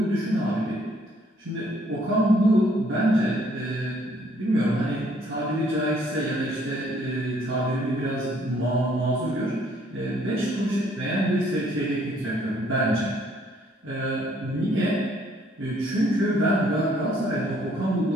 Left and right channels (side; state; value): both; normal; correlation 0.64